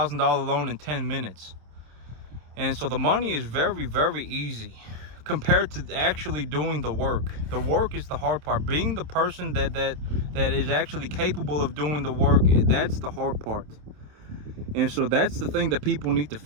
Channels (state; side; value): late; left; 27 ms